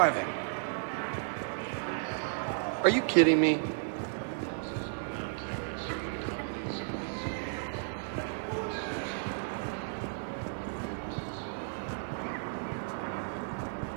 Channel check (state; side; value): silent; left; digital silence